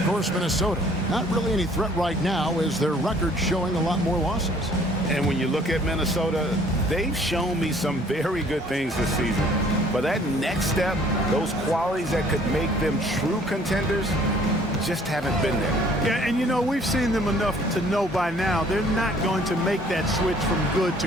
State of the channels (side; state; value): both; normal; correlation 0.57